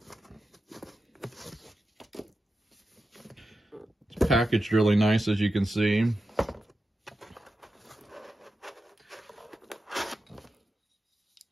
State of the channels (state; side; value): normal; both; correlation 0.91